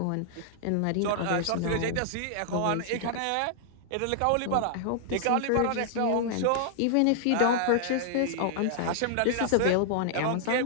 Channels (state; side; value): different; both; correlation -0.01